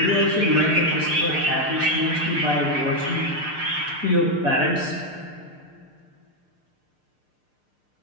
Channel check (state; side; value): late; left; 6.6 ms